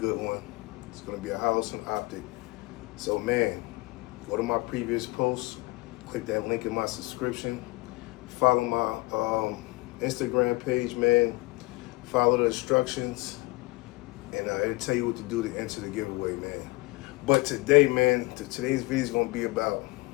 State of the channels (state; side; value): quieter; right; 23.4 dB